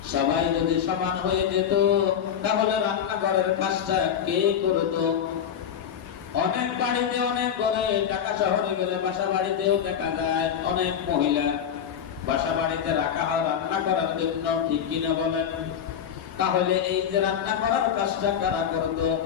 সবাই যদি সমান হয়ে যেত তাহলে রান্নাঘরের কাজটা কে করতো? অনেক বাড়িতে, অনেক ঘরে, ঢাকা শহরে গেলে বাসা বাড়িতেও দেখা যায় অনেক মহিলা বাসা বাড়িতে রাখা হয় রান্না করার জন্য, ঠিক কিনা বলেন? তাহলে এই যে রান্না করার কাজটা কারা করতো,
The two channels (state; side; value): quieter; right; 8.5 dB